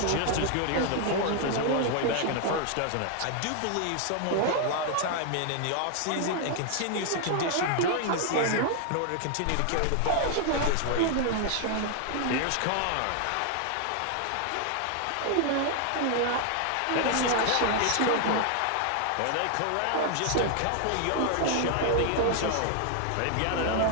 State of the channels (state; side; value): different; both; correlation 0.00